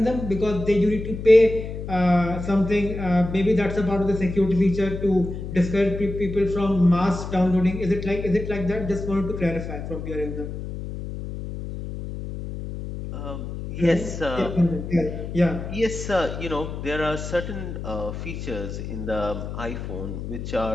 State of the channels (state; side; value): noise; left; hum, 7 dB below the sound